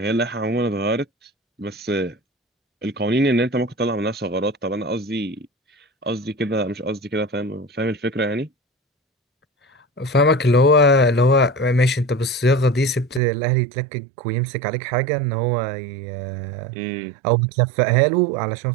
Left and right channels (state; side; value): drops out; left; at 13.2 s